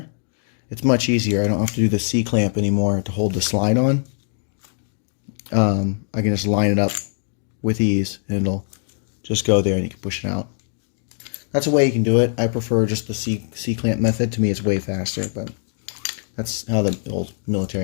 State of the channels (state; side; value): silent; right; digital silence